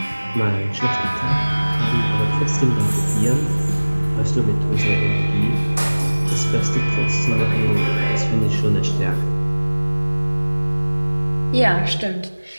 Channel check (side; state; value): both; inverted; correlation -1.00